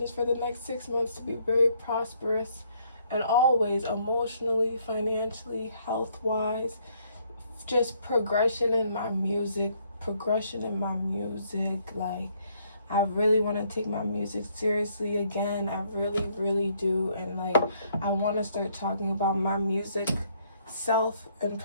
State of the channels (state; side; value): inverted; both; correlation -0.68